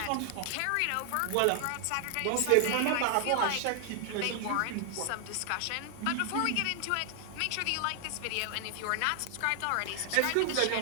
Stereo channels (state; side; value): different; both; correlation 0.00